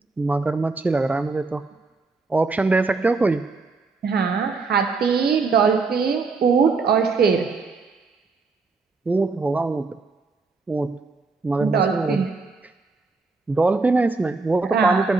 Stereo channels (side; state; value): left; quieter; 4.1 dB